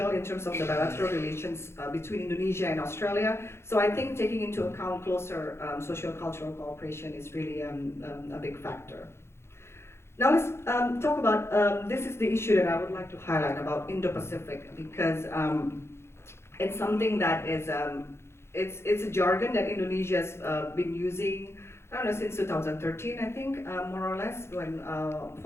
in terms of the bilateral relations between Indonesia and Australia. So I think taking into account closer socio-cultural cooperation is really a big factor. Now let's talk about, this is the issue that I would like to highlight about Indo-Pacific, because it's something that is, it's a jargon that Indonesia's been using, I don't know, since 2013, I think, more or less, when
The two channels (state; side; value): late; right; 0.12 ms